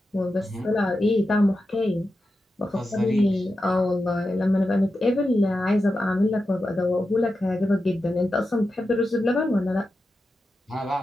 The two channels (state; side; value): normal; both; correlation 0.90